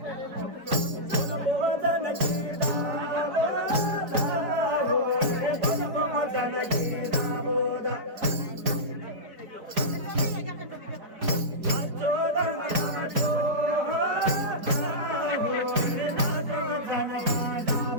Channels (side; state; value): left; late; 4.4 ms